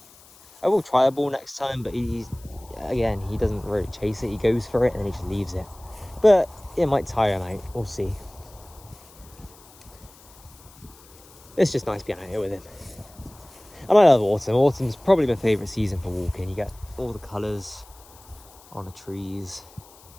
I will try a ball next time, but he doesn't really chase it. He goes for it and then he just leaves it. But it might tire him out. We'll see. It's just nice being out here with him. And I love autumn. Autumn's probably my favourite season for walking. You get all the colours on the trees,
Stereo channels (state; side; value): noise; left; hiss, 24 dB below the sound